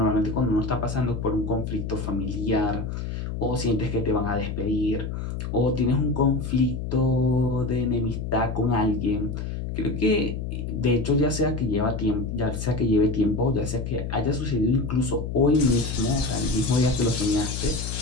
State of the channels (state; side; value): noise; left; hum, 5 dB below the sound